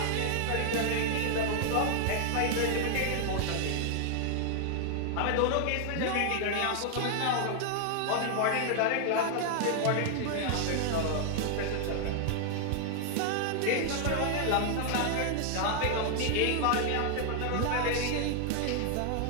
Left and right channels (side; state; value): both; different; correlation 0.00